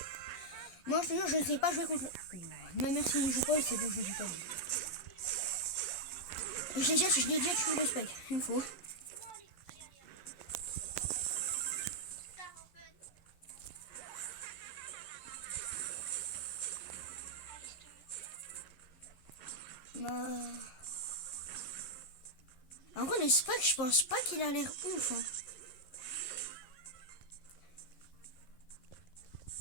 Moi, je te jure, je ne sais pas jouer contre le... Même si il joue pas, c'est bon, je ne sais pas. Je l'ai déjà tué le Spike, une fois. Bah... En vrai, le Spike, je pense pas qu'il a l'air ouf. Hein.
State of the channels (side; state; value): right; late; 11 ms